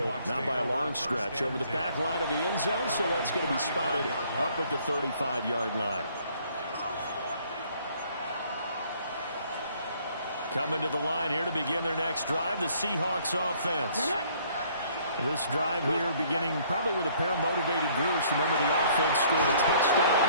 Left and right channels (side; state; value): both; inverted; correlation -0.61